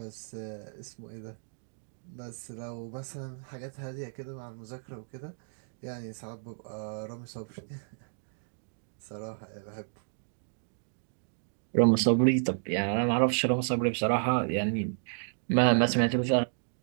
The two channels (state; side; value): silent; left; digital silence